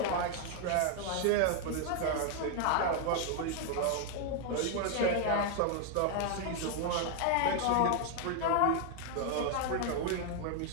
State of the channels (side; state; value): both; different; correlation 0.00